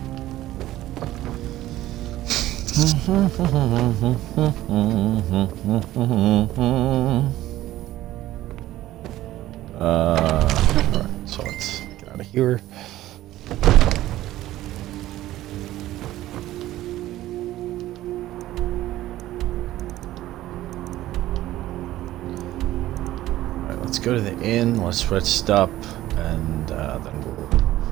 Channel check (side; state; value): left; quieter; 15.0 dB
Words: Alright, so let's get out of here. Alright, let's go to the inn, let's rest up, and then we'll